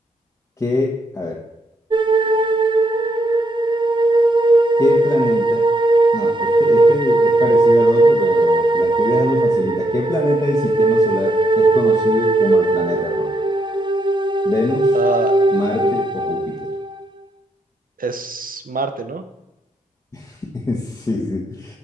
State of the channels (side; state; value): both; normal; correlation 0.77